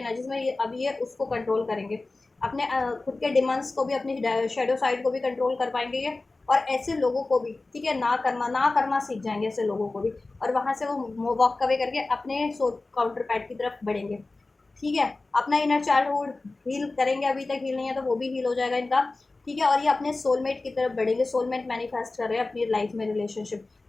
में ये अब ये उसको कंट्रोल करेंगे, अपने खुद के डिमांड्स को भी, अपनी शेडो साइड को भी कंट्रोल कर पाएंगे ये। और ऐसे लोगों को भी, ठीक है, ना करना सीख जाएंगे ऐसे लोगों को भी, और वहाँ से वो वॉक अवे करके अपने काउंटर पैट की तरफ बढ़ेंगे, ठीक है। अपना इनर चाइल्डहुड हील करेंगे, अभी तक हील नहीं है तो वो भी हील हो जाएगा इनका, ठीक है। और ये अपने सोलमेट की तरफ बढ़ेंगे, सोलमेट मैनिफेस्ट कर रहे हैं अपनी लाइफ में, रिलेशनशिप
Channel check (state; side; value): quieter; right; 3.3 dB